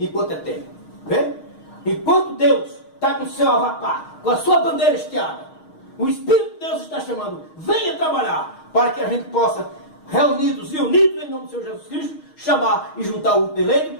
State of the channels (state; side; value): late; right; 6.4 ms